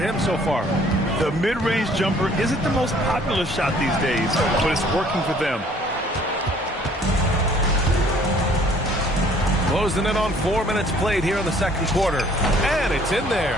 so far. The mid-range jumper isn't the most popular shot these days, but it's working for them. Closing in on 4 minutes played here in the second quarter. And it's in there.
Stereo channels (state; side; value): normal; both; correlation 0.57